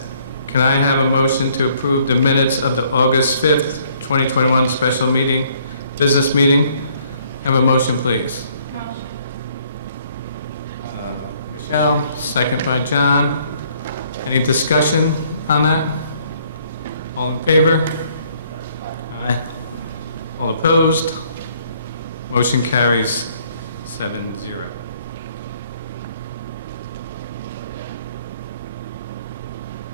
Can I have a motion to approve the minutes of the August 5th, 2021 special meeting, business meeting? Have a motion, please. Michelle, second by John. Any discussion on that? All in favor? Aye. All opposed? Motion carries 7-0.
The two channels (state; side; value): inverted; both; correlation -0.63